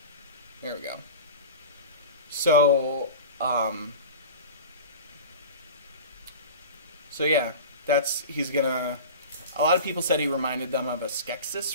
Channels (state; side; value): inverted; both; correlation -0.33